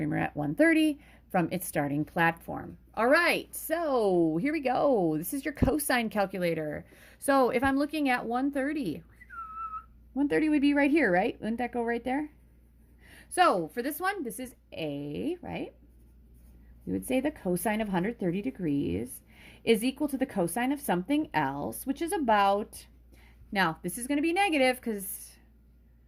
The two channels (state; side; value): identical; both; correlation 1.00